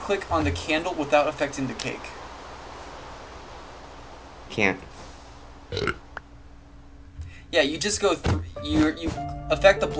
click on the candle without affecting the cake. Can't. Yeah, you just go through. You affect the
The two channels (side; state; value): both; identical; correlation 1.00